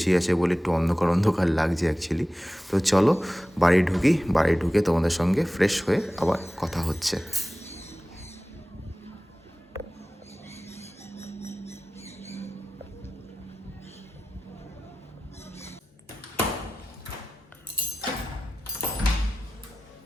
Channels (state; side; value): normal; both; correlation 0.95